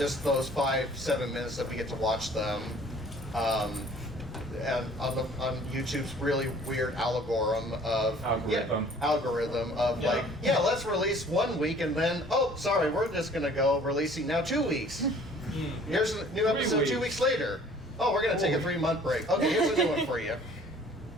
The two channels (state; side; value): normal; both; correlation 0.53